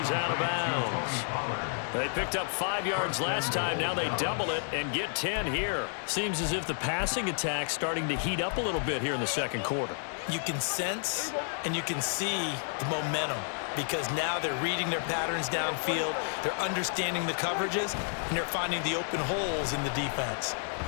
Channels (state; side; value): silent; right; 57 dB below the other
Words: out of bounds. They picked up 5 yards last time. Now they double it and get 10 here. Seems as if the passing attack's starting to heat up a little bit here in the second quarter. You can sense and you can see the momentum because now they're reading their patterns downfield, they're understanding the coverages, and they're finding the open holes in the defense.